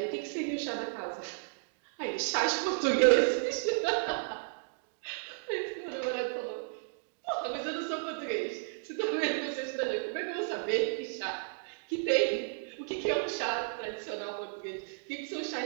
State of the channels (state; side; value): silent; left; digital silence